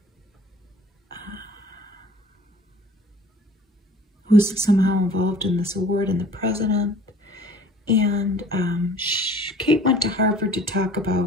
Who's somehow involved in this award, and the president. And Kate went to Harvard to talk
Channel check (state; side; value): normal; both; correlation 0.49